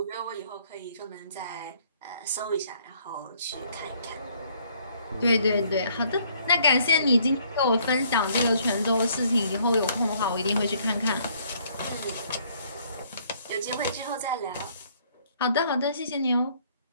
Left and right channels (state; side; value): inverted; both; correlation -0.64